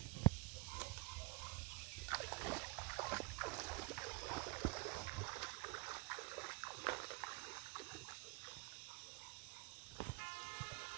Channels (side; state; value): left; quieter; 20.5 dB